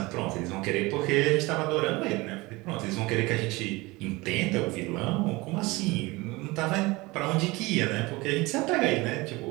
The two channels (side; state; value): left; quieter; 22.5 dB